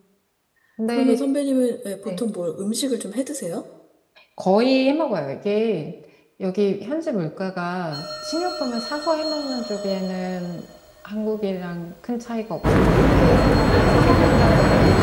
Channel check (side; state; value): both; identical; correlation 1.00